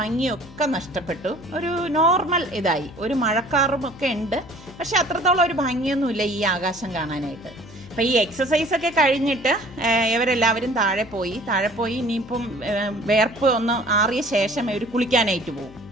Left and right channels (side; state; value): left; noise; hum, 19 dB below the sound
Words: ഒക്കെ നഷ്ടപ്പെട്ടു. ഒരു നോർമൽ ഇതായി. ഒരു മഴക്കാറും ഒക്കെ ഉണ്ട്, പക്ഷെ അത്രത്തോളം ഒരു ഭംഗിയൊന്നുമില്ല ഈ ആകാശം കാണാനായിട്ട്. അപ്പം ഈ എക്സസൈസൊക്കെ കഴിഞ്ഞിട്ട് ഇവരെല്ലാവരും താഴെ പോയി ഇനിയിപ്പം വേർപ്പ് ഒന്ന് ആറിയ ശേഷം ഇവർ കുളിക്കാനായിട്ട് പോകും.